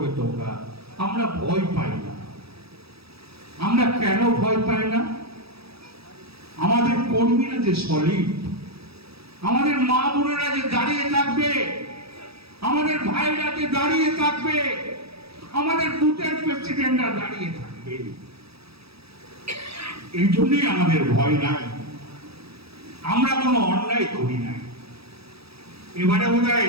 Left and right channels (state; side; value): late; left; 0.77 ms